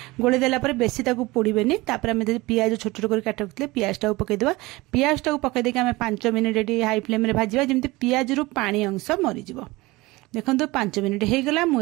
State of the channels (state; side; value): quieter; left; 21.3 dB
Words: गोळे देला परे बेसी ताको पोड़ीबेनी। तापर हम पियाज छोट छोट कर काट रखितले पियाज टाको पके देबा। पियाज टाको पके देके हम 5 मिनिट एटी हाई फ्लेम रे भाजीबा जेमती पियाज रु पानी अंश मरि जिवो। देखंतु 5 मिनिट हे गला। मु